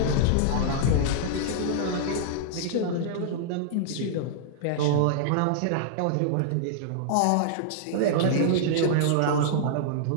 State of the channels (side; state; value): both; different; correlation -0.01